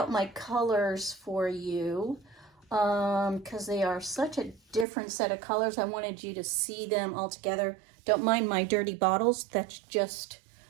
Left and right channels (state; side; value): drops out; left; at 4.9 s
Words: my colors for you because they are such a different set of colors. I wanted you to see them all together. Don't mind my dirty bottles, that's just